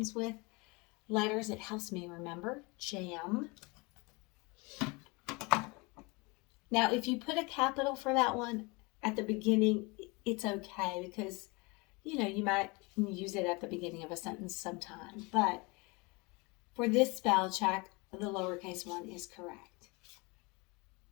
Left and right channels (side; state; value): right; quieter; 27.2 dB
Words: with letters, it helps me remember. Jam. Now if you put a capital for that one at the beginning, it's okay because, you know, you might use it at the beginning of a sentence sometime, but for this spell check, the lowercase one is correct.